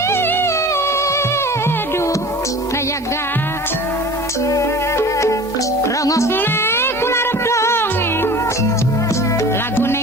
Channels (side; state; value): both; normal; correlation 0.40